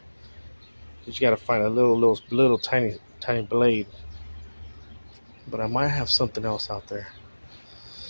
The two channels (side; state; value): both; inverted; correlation -1.00